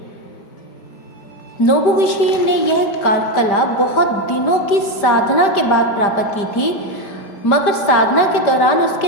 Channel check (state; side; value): late; right; 5.1 ms